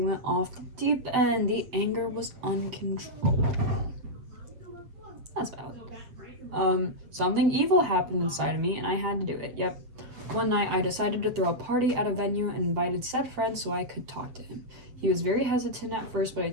off the deep end. The anger was uncontrollable. That's valid. Something evil happened inside of me and I had to do it. Yep. One night I decided to throw a party at a venue and invited said friend so I could talk to him. He was very hesitant at first, but I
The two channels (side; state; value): left; late; 7.9 ms